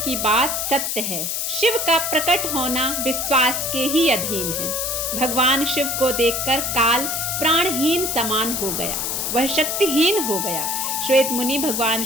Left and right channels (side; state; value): left; noise; hiss, 1 dB below the sound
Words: बात सत्य है। शिव का प्रकट होना विश्वास के ही अधीन है। भगवान शिव को देखकर काल प्राणहीन समान हो गया, वह शक्तिहीन हो गया। श्वेत मुनि भगवान